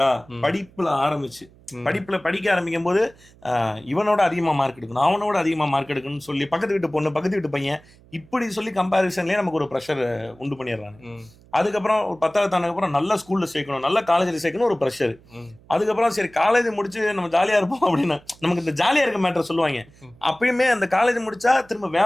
படிப்புல ஆரம்பிச்சு படிப்புல படிக்க ஆரம்பிக்கும் போது இவனோட அதிகமா மார்க் எடுக்கணும், அவனோட அதிகமா மார்க் எடுக்கணும்னு சொல்லி பக்கத்து வீட்டு பொண்ணு, பக்கத்து வீட்டு பையன் இப்படி சொல்லி கம்பேரிசன்லயே நமக்கு ஒரு ப்ரெஷர் உண்டு பண்ணிடுறாங்க. அதுக்கப்புறம் ஒரு 10வது தாண்டதுக்கு அப்புறம் நல்ல ஸ்கூல்ல சேர்க்கணும், நல்ல காலேஜ்ல சேர்க்கணும் ஒரு ப்ரெஷர். அதுக்கப்புறம் சரி காலேஜ் முடிச்சு நம்ம ஜாலியா இருப்போம் அப்படின்னா நமக்கு இந்த ஜாலியா இருக்க மேட்டர் சொல்லுவாங்க. அப்பயுமே அந்த காலேஜ் முடிச்சா திரும்ப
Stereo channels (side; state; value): right; noise; hum, 26 dB below the sound